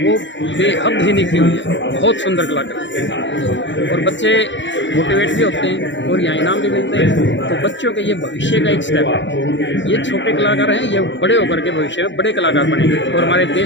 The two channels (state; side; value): late; right; 0.54 ms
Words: बेहद ही निखरी हुई है, बहुत सुंदर कला करते हैं और बच्चे मोटिवेट भी होते हैं और यहाँ इनाम भी मिलते हैं। तो बच्चों के ये भविष्य का एक स्टेप है। ये छोटे कलाकार हैं, ये बड़े होकर के भविष्य में बड़े कलाकार बनेंगे और हमारे